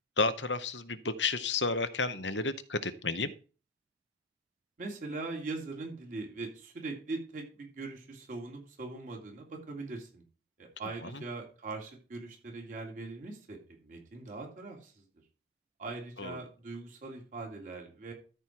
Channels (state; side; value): normal; both; correlation 0.06